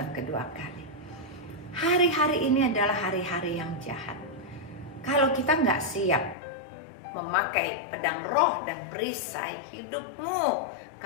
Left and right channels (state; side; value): drops out; right; at 6.4 s